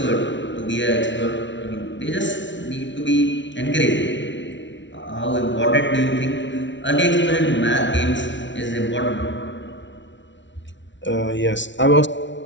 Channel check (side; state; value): right; late; 0.54 ms